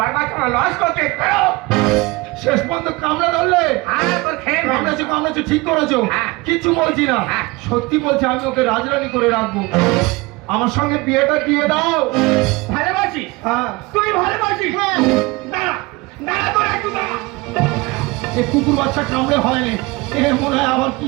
বাচ্চা লস করতে শেষ পর্যন্ত কামড়া ধরলে কামড়াচ্ছি ঠিক করেছো কিছু বলছি না সত্যি বলছি আমি ওকে রাজরানী করে রাখবো আমার সঙ্গে বিয়েটা দিয়ে দাও ভালোবাসি হ্যাঁ তুমি ভালোবাসি দাঁড়া তোর একটু দাঁড়া এই কুকুর বাচ্চা কামড়ে হয়নি এ মনে হয় আবার কি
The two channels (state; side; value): quieter; left; 23.3 dB